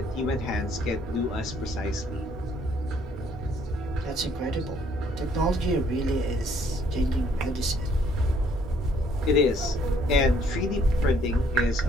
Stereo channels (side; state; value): both; normal; correlation 0.64